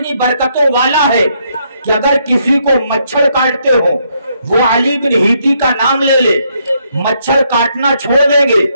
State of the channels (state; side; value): inverted; both; correlation -0.74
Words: برکتوں والا ہے کہ اگر کسی کو مچھر کاٹتے ہو وہ علی بن ہیتی کا نام لے لے، مچھر کاٹنا چھوڑ دیں گے۔